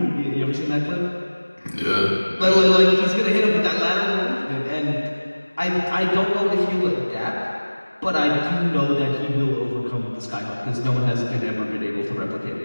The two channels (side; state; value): both; inverted; correlation -1.00